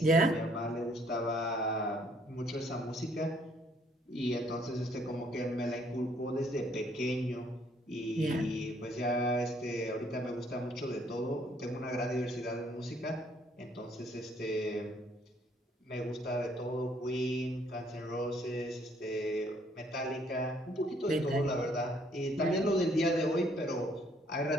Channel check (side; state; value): both; normal; correlation 0.65